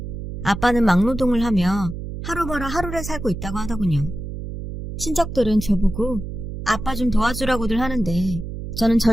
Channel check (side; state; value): right; noise; hum, 8 dB below the sound